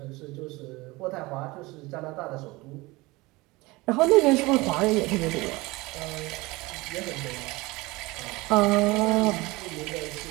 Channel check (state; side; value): quieter; left; 22.3 dB